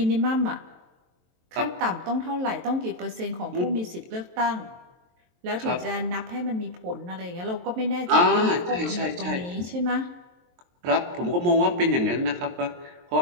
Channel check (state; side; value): late; left; 23 ms